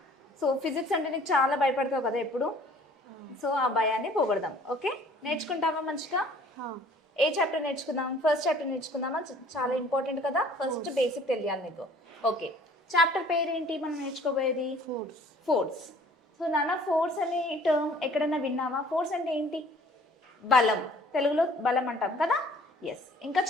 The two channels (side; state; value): both; normal; correlation 0.53